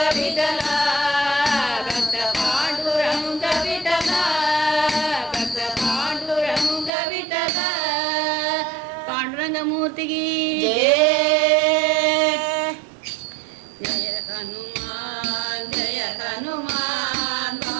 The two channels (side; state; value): left; drops out; at 6.9 s